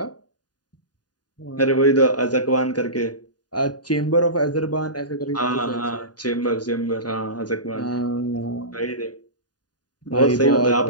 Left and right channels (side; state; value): right; late; 0.69 ms